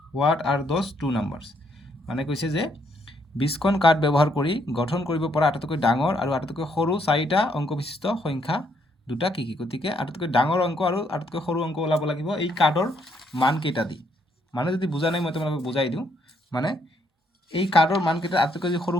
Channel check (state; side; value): normal; both; correlation 0.72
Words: হোৱাট আৰ দ'জ 2 নাম্বাৰছ মানে কৈছে যে 20খন কাৰ্ড ব্যৱহাৰ কৰি গঠন কৰিব পৰা আটাইতকৈ ডাঙৰ আৰু আটাইতকৈ সৰু 4টা অংক বিশিষ্ট সংখ্যা দুটা কি কি গতিকে আটাইতকৈ ডাঙৰ অংক আৰু আটাইতকৈ সৰু অংক ওলাব লাগিব এই কাৰ্ডৰ মান কেইটা দি মানে যদি বুজা নাই মই তোমালোকক বুজাই দিওঁ মানে এই কাৰ্ডৰ মান কেইটা আটাইতকৈ যদি সৰু